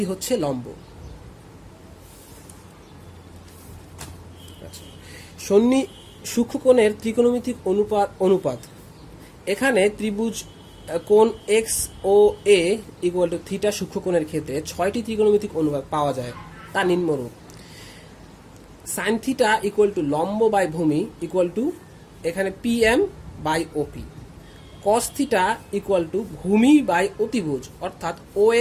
হচ্ছে লম্ব। সূক্ষ্মকোণের ত্রিকোণমিতিক অনুপাত। এখানে ত্রিভুজ কোণ X O A equal to theta সূক্ষ্মকোণের ক্ষেত্রে 6টি ত্রিকোণমিতিক অনুপাত পাওয়া যায়। তা নিম্নরূপ: সাইন থিটা ইকুয়াল টু লম্ব বাই ভূমি ইকুয়াল টু এখানে PM by OP. Cos theta equal to ভূমি বাই অতিভুজ অর্থাৎ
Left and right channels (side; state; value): both; identical; correlation 1.00